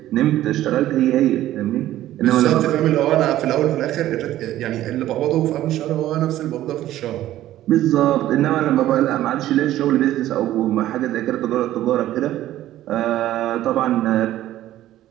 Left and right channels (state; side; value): quieter; left; 13.8 dB